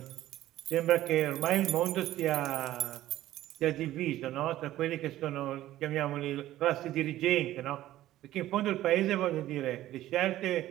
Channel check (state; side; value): quieter; left; 14.3 dB